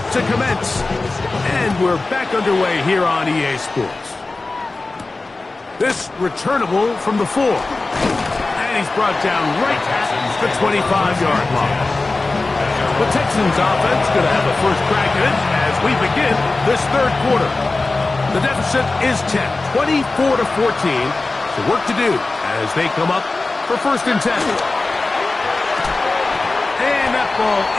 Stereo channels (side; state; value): right; quieter; 3.4 dB